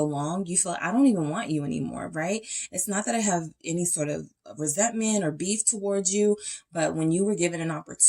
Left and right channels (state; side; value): identical; both; correlation 1.00